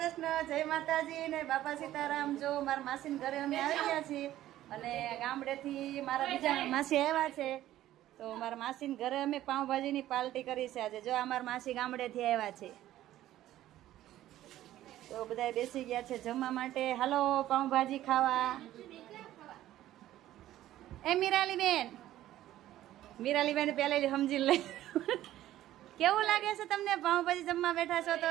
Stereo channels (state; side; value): quieter; left; 13.8 dB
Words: જય માતાજી ને બાપા સીતારામ. જો મારા માસીના ઘરે અમે આવી ગયા છીએ અને ગામડેથી મારા બીજા માસી આવ્યા છે. તો મારા માસીના ઘરે અમે પાઉંભાજીની પાર્ટી કરી છે આજે. જો અમારા માસી ગામડેથી આવ્યા છે તો બધા બેસી ગયા છે જમવા માટે. હાલો પાઉંભાજી ખાવા. એ મીરાલીબેન પહેલેથી સમજી લઈ. કેવું લાગે છે તમને પાઉંભાજી જમવા બેઠા છો